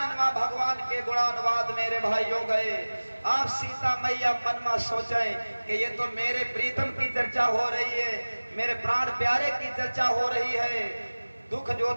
भगवान के गुणानुवाद मेरे भाइयों गए। आप सीता मैया मन में सोचें कि ये तो मेरे प्रीतम की चर्चा हो रही है, मेरे प्राण प्यारे की चर्चा हो रही है। दुख जो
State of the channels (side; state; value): both; inverted; correlation -1.00